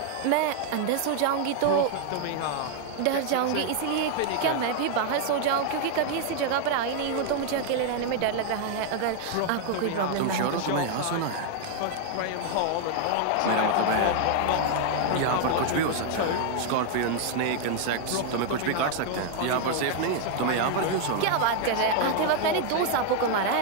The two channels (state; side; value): different; both; correlation 0.00